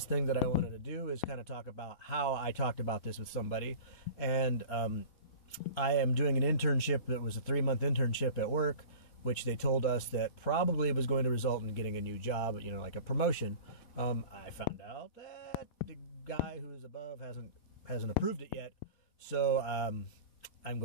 thing that I wanted to do is kind of talk about how I talked about this with somebody. And I am doing an internship that was a 3-month internship at work, which they told us that probably was going to result in getting a new job, you know, like a promotion. I found out that the guy who's above hasn't approved it yet. So I'm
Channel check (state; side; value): late; right; 4.1 ms